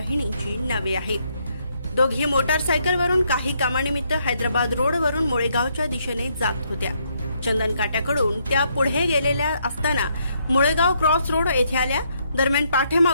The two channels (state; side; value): inverted; both; correlation -0.73